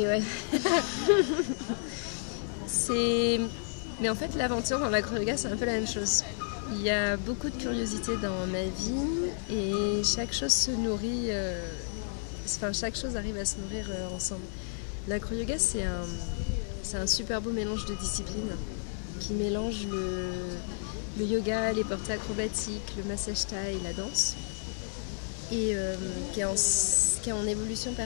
ouais. Mais en fait, l'aventure dans l'acro-yoga, c'est un peu la même chose. Il y a beaucoup de curiosité dans ma vie et chaque chose se nourrit, chaque chose arrive à se nourrir ensemble. L'acro-yoga, c'est un super beau mélange de disciplines qui mélange le yoga, les portées acrobatiques, le massage thaï, la danse, et qui est en évolution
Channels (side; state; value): right; silent; digital silence